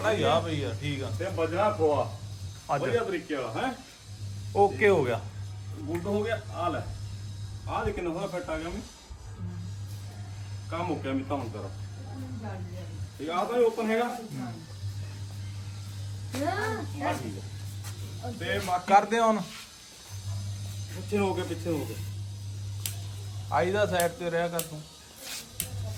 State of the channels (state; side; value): identical; both; correlation 1.00